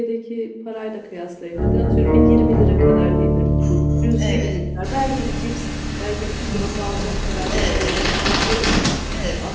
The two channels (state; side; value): identical; both; correlation 1.00